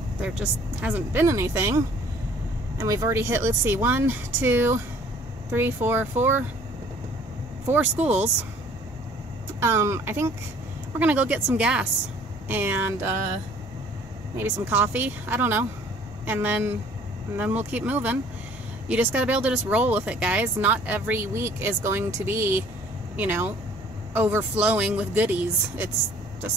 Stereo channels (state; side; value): normal; both; correlation 0.54